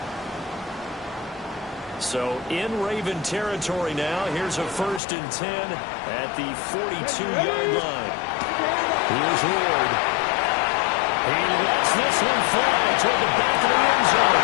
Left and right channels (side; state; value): right; drops out; at 5.0 s